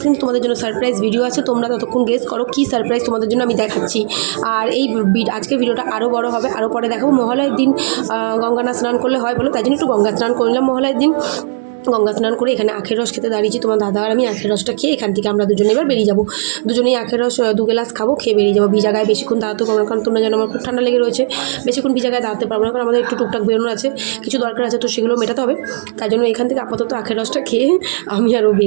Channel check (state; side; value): silent; left; digital silence